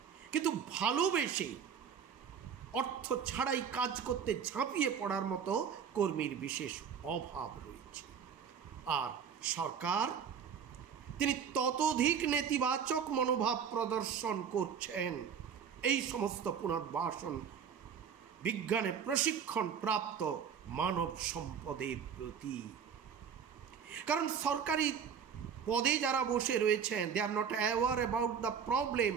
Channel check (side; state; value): left; quieter; 7.2 dB